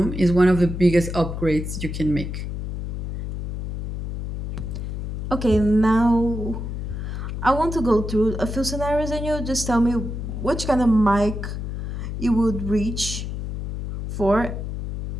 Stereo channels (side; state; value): left; noise; hum, 5 dB below the sound